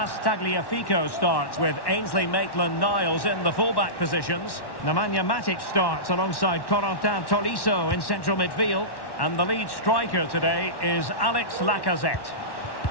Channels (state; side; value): late; right; 1.1 ms